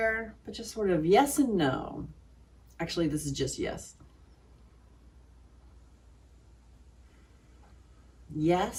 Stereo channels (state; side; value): identical; both; correlation 1.00